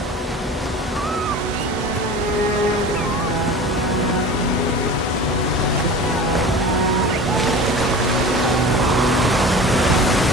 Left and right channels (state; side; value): normal; both; correlation 0.37